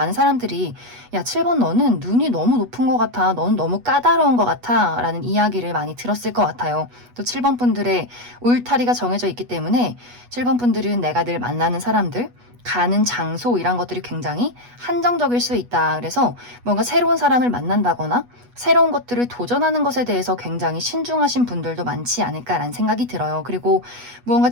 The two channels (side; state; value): left; late; 8.2 ms